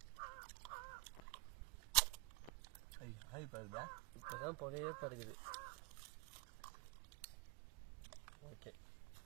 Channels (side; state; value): left; quieter; 25.4 dB